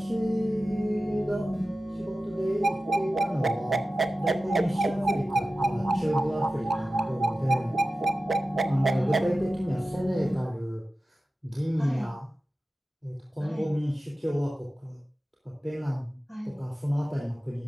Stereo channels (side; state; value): both; normal; correlation 0.94